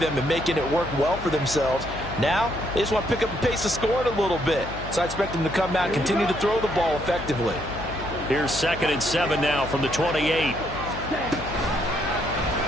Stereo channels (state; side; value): noise; left; hum, 10 dB below the sound